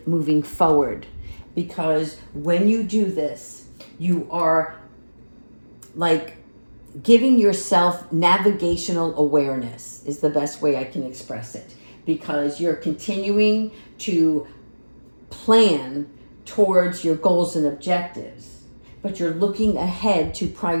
moving forward. Because when you do this, you are like giving yourself navigational awareness is the best way I can express it. Because you're continuing to plan towards your goals and objectives, but you're looking ahead to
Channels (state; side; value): inverted; both; correlation -1.00